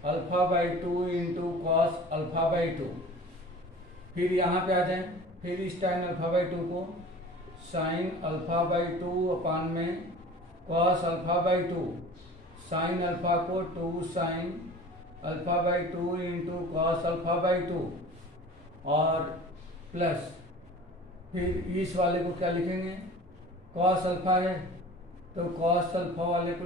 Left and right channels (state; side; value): normal; both; correlation 0.41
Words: alpha by 2 into cos alpha by 2। फिर यहाँ पे आ जाए, फिर इस tan अल्फा बाई 2 को साइन अल्फा बाई 2 अपान में cos alpha by 2, sine alpha को 2 sine alpha by 2 into cos alpha by 2, और प्लस फिर इस वाले को क्या लिखेंगे, कॉस अल्फा है तो कॉस अल्फा वाले को